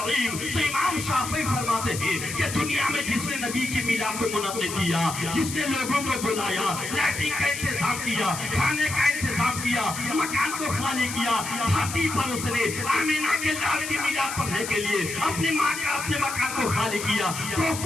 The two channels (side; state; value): left; noise; hiss, 7 dB below the sound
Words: تو امام شافعی فرماتے ہیں کہ دنیا میں جس نے نبی کی میلاد کو منعقد کیا، جس نے لوگوں کو بلایا، لائٹنگ کا انتظام کیا، کھانے کا انتظام کیا، مکان کو خالی کیا، دھرتی پر اس نے آمینہ کے لال کی میلاد پڑھنے کے لیے اپنے ماں کا اپنے مکان کو خالی کیا،